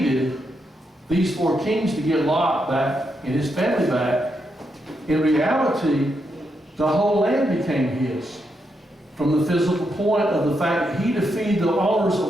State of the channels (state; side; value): normal; both; correlation 0.82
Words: these 4 kings to get Lot back and his family back, in reality, the whole land became his. From the physical point of the fact that he defeated the owners